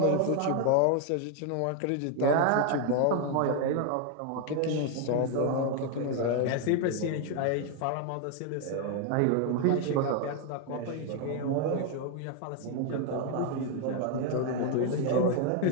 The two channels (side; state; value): both; different; correlation 0.01